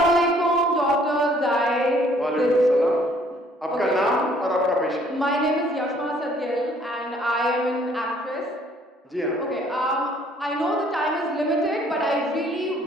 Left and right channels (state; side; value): normal; both; correlation 0.61